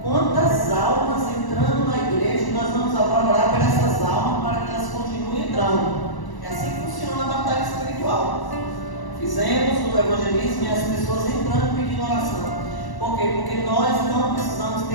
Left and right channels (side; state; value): right; late; 1.0 ms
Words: Quantas almas entrando na igreja, e nós vamos agora orar por essas almas para que elas continuem entrando. É assim que funciona a batalha espiritual. Fizemos o evangelismo e as pessoas entrando pedindo oração. Por quê? Porque nós não precisamos